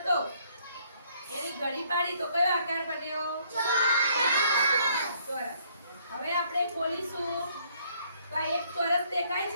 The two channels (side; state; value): both; inverted; correlation -0.66